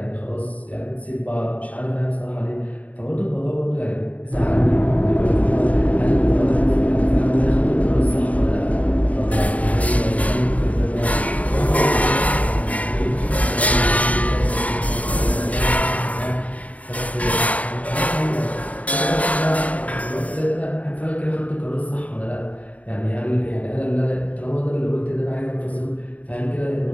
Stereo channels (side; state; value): right; late; 0.069 ms